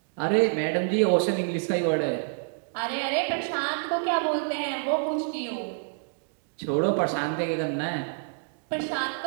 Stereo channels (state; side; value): silent; left; digital silence